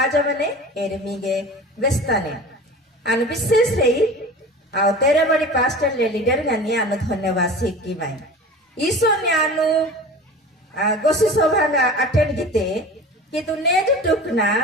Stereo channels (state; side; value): normal; both; correlation 0.37